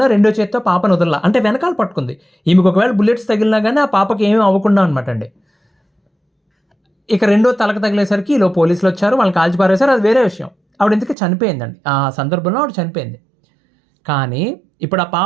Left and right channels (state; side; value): drops out; left; at 11.2 s